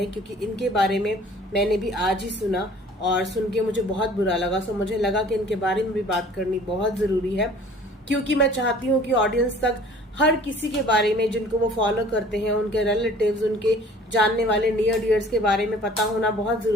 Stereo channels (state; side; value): normal; both; correlation 0.50